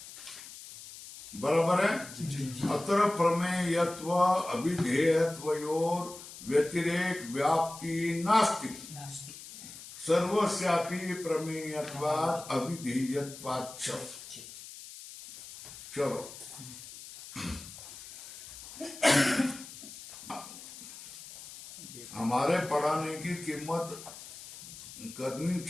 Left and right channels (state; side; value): noise; left; hiss, 14 dB below the sound